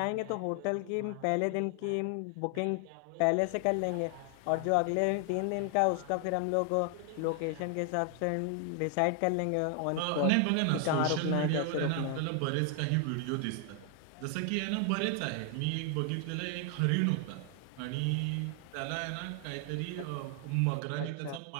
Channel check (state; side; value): different; both; correlation 0.00